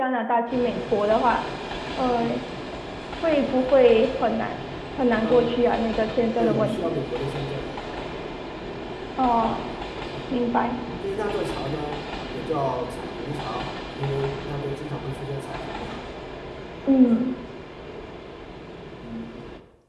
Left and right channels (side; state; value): both; identical; correlation 1.00